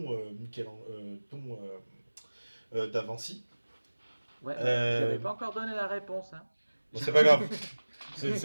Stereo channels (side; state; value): both; inverted; correlation -1.00